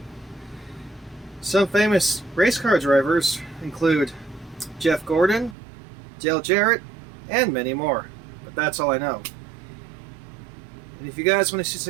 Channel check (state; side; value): drops out; left; at 5.6 s